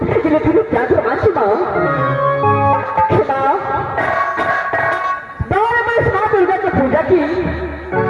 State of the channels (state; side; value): identical; both; correlation 1.00